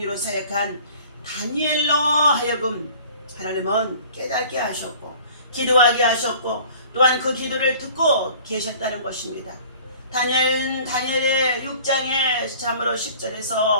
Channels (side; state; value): both; inverted; correlation -0.49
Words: 사역한 다니엘로 하여금 하나님은 깨닫게 하셨고 기도하게 하셨고 또한 그 기도를 듣고 계셨다는 것입니다. 다니엘의 6장의 참으로